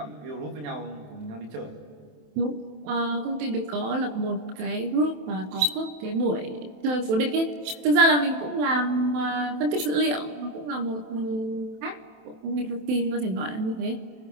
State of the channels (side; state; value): left; late; 27 ms